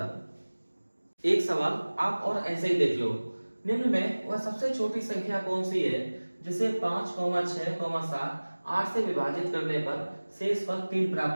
एक सवाल आप और ऐसे ही देख लो। निम्न में वह सबसे छोटी संख्या कौन सी है जिसे 5, 6, 7, 8 से विभाजित करने पर शेषफल 3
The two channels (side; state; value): both; inverted; correlation -1.00